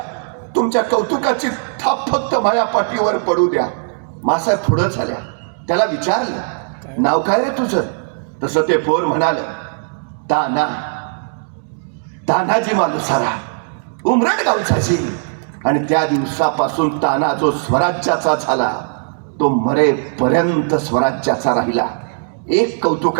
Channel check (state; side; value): silent; left; digital silence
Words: तुमच्या कौतुकाची थाप फक्त माया पाठीवर पडू द्या. मासाहेब पुढं झाल्या. त्याला विचारलं, नाव काय रे तुझं? तसं ते पोर म्हणाल, ताना, तानाजी मालुसरा, उमरड गावचाची. आणि त्या दिवसापासून ताना जो स्वराज्याचा झाला तो मरेपर्यंत स्वराज्याचा राहिला. एक